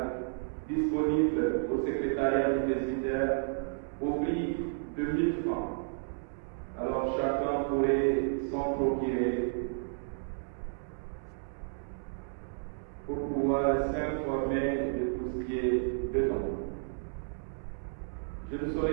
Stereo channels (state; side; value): silent; left; 56 dB below the other